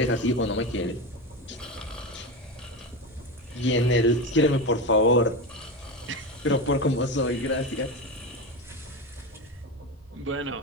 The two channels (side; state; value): both; normal; correlation 0.20